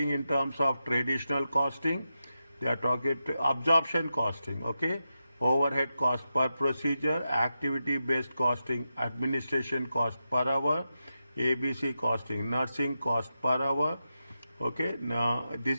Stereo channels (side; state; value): both; inverted; correlation -0.89